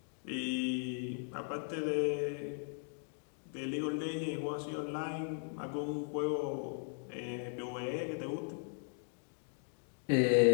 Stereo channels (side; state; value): right; silent; 53 dB below the other